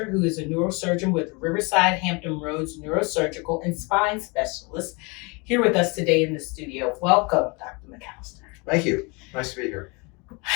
who is a neurosurgeon with Riverside Hampton Roads Neurosurgical and Spine Specialist, here with us today in the studio. Welcome, Dr. McAllister. Thank you. Nice to be here.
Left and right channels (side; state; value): right; quieter; 28.9 dB